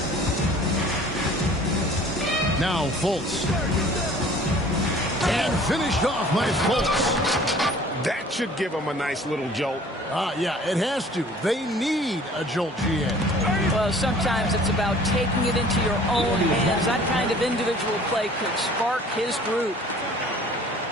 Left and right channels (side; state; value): both; normal; correlation 0.50